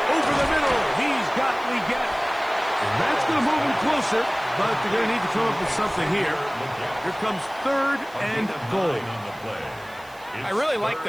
Over the middle, he's got Leggett. And that's going to move him closer, but they're going to need to come up with something here. Here comes 3rd and goal. I really like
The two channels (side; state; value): right; noise; hiss, 25 dB below the sound